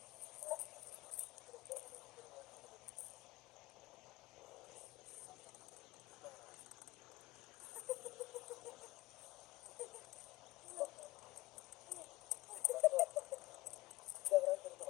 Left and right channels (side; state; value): right; quieter; 19.4 dB